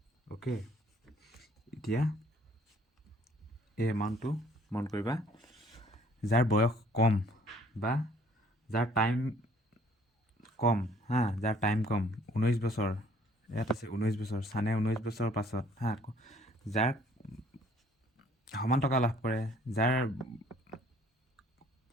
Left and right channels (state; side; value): normal; both; correlation 0.58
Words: অ'কে, এতিয়া এই এমাউণ্টটো মন কৰিবা। যাৰ বয়স কম বা যাৰ টাইম কম হা, যাৰ টাইম কম 19 বছৰ, ইয়াত আছে 19 বছৰ, ছানে 19 বছৰৰ পাছত হা, যাৰ সমান টকা লাভ কৰে, যাৰ